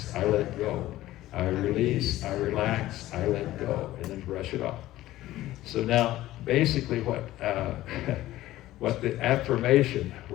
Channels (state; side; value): quieter; right; 15.5 dB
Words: I let go. I release, I relax, I let go. And then brush it off. So now, basically what the affirmation,